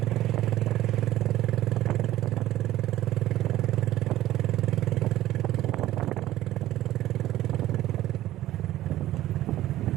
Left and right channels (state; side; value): quieter; left; 14.6 dB